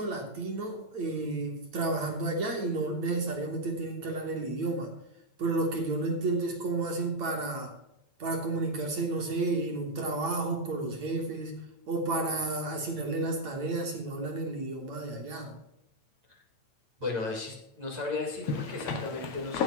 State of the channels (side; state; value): left; late; 8.9 ms